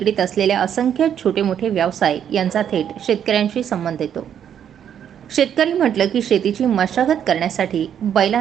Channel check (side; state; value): left; quieter; 9.1 dB